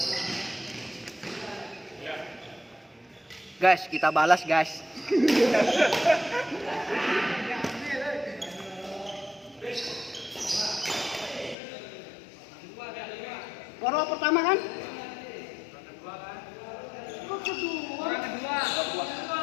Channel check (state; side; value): drops out; right; at 11.6 s